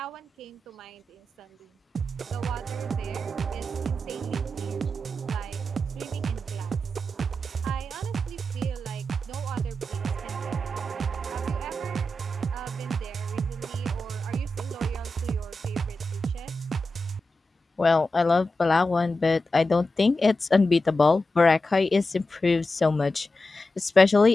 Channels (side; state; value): both; normal; correlation 0.91